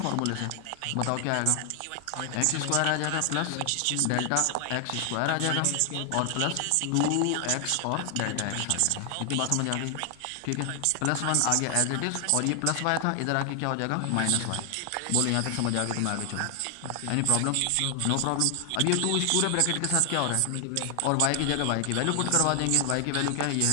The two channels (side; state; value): both; different; correlation 0.00